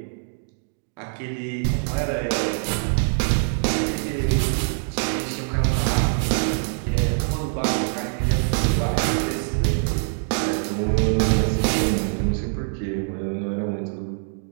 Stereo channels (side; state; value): left; silent; digital silence